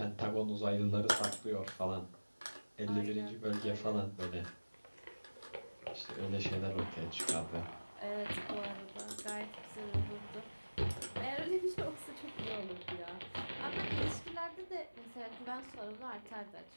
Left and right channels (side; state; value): both; inverted; correlation -1.00